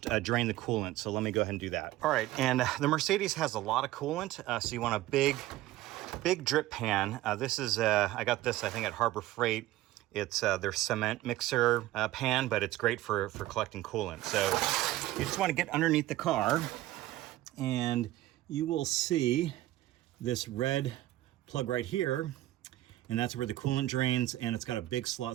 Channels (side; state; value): left; quieter; 15.7 dB